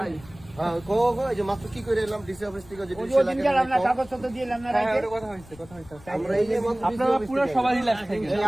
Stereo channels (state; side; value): noise; left; rumble, 21 dB below the sound